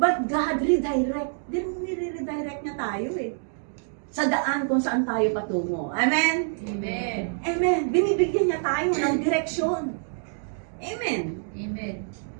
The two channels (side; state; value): left; silent; digital silence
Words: God redirect. Nire-redirect niya tayo eh. Sa daan kung saan tayo patungo. Amen? Amen. Amen. Binibigyan niya tayo ng direksyon. Amen. Amen.